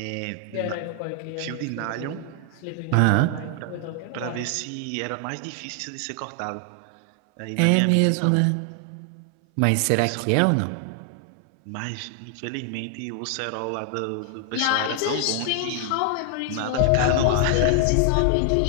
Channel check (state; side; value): different; both; correlation 0.00